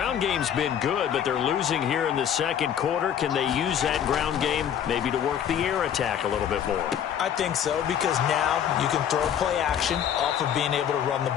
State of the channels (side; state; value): right; quieter; 9.2 dB